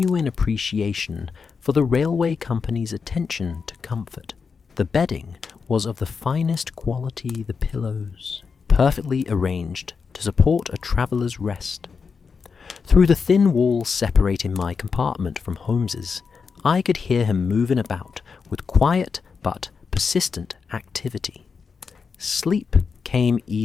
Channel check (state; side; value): quieter; right; 5.5 dB